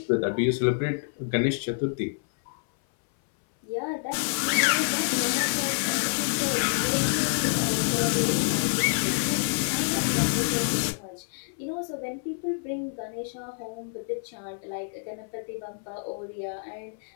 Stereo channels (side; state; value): right; silent; 58 dB below the other